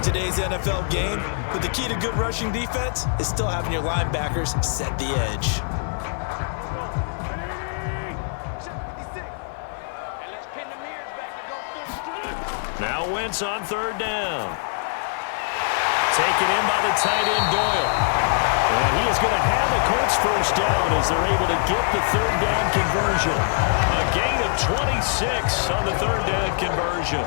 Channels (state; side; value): silent; right; 63 dB below the other